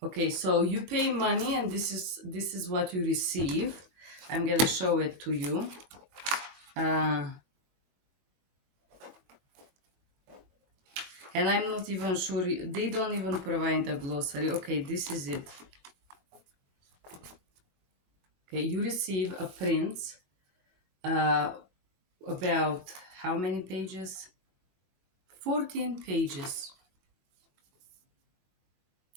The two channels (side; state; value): left; late; 21 ms